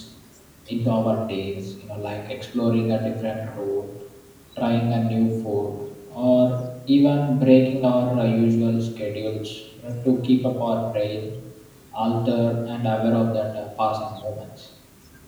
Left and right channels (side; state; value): both; identical; correlation 1.00